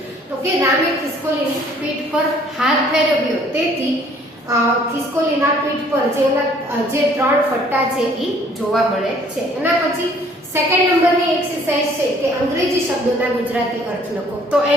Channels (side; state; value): both; normal; correlation 0.58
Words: તો કે રામે ખિસકોલીની પીઠ પર હાથ ફેરવ્યો તેથી ખિસકોલીના પીઠ પર જે ત્રણ ફટ્ટા છે એ જોવા મળે છે. એના પછી સેકન્ડ નંબરની એક્સરસાઇઝ છે કે અંગ્રેજી શબ્દોના ગુજરાતી અર્થ લખો. તો